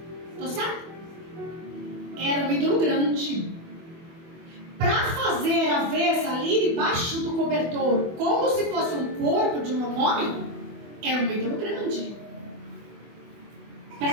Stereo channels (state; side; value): late; left; 24 ms